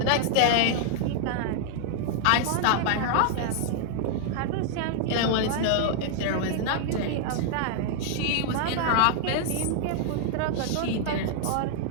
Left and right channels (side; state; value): both; different; correlation -0.01